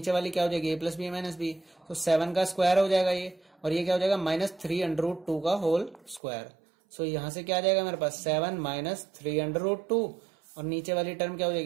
वाली क्या हो जाएगी? a + b - b। तो 7 का स्क्वायर हो जाएगा ये, और ये क्या हो जाएगा? -3√2 का होल स्क्वायर। सो यहां से क्या आ जाएगा मेरे पास? 7 - 3√2 और नीचे वाली टर्म क्या हो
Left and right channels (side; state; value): left; drops out; at 6.2 s